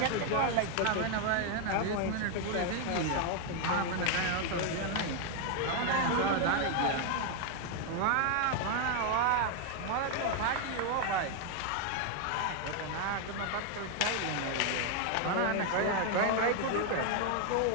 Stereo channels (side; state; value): both; different; correlation 0.01